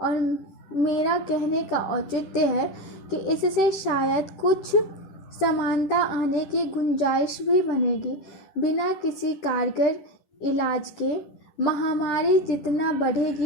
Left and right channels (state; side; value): late; right; 10 ms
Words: मेरा कहने का औचित्य है कि इससे शायद कुछ समानता आने की गुंजाइश भी बनेगी। बिना किसी कारगर इलाज के महामारी जितना